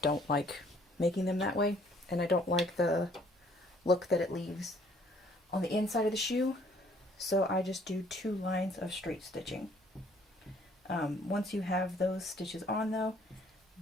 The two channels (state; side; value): normal; both; correlation 0.61